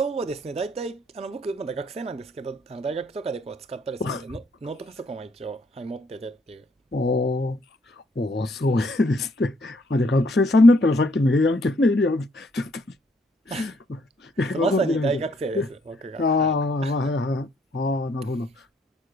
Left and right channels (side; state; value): both; normal; correlation 0.69